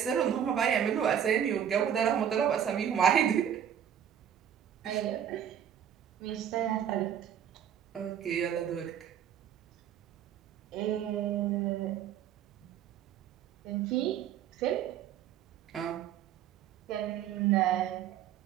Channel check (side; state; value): left; quieter; 9.5 dB